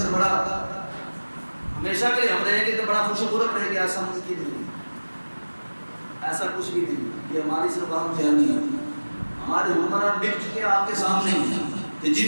بڑا ہمیشہ کے لیے ہم رہیں گے تو بڑا خوش و خرم رہیں گے، ایسا ممکن نہیں، ایسا کچھ بھی نہیں۔ یہ ہماری صرف عام فہمی ہے۔ ہمارے حکمران بک چکے آپ کے سامنے ہیں کہ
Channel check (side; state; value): both; inverted; correlation -1.00